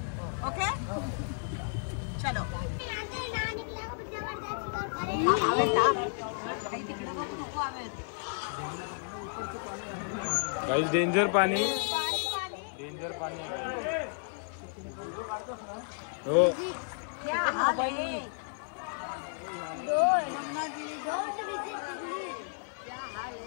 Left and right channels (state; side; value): silent; right; 56 dB below the other